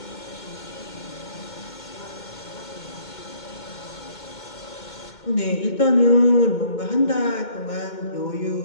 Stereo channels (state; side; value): late; right; 2.2 ms